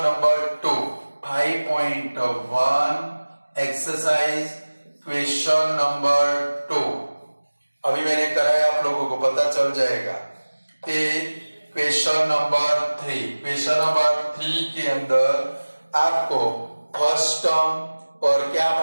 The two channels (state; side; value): inverted; both; correlation -1.00